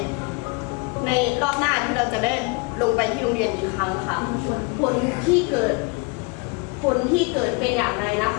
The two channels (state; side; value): quieter; right; 29.8 dB